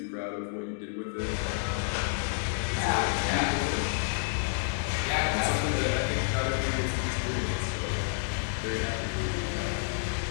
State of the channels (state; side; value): silent; right; digital silence